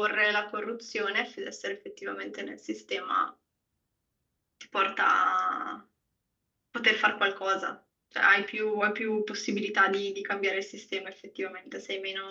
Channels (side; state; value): both; identical; correlation 1.00